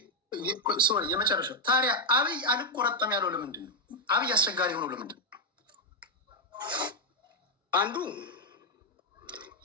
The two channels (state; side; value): normal; both; correlation 0.00